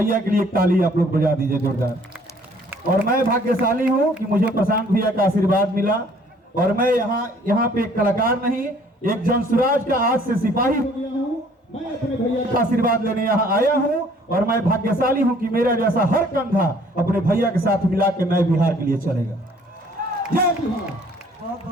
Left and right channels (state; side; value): normal; both; correlation 0.58